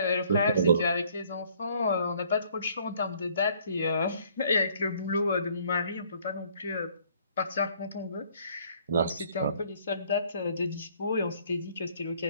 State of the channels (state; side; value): inverted; both; correlation -0.61